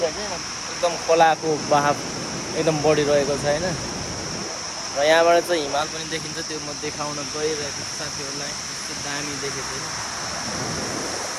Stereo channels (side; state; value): both; identical; correlation 1.00